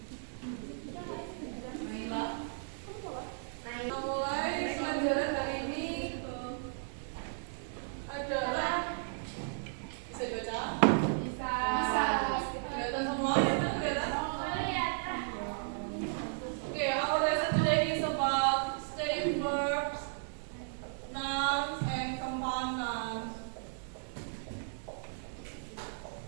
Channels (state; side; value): silent; left; digital silence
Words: Nah, mulai pelajaran hari ini adalah bisa dibaca? Bisa. Kelihatan semua ya, kelihatan? Okay, our lesson today is about steady verbs, nouns, and compound nouns.